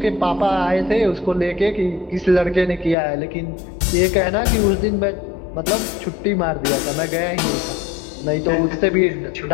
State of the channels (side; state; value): right; drops out; at 3.0 s